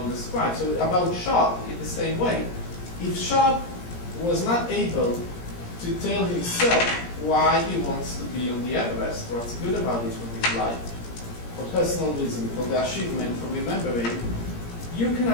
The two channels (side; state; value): right; late; 17 ms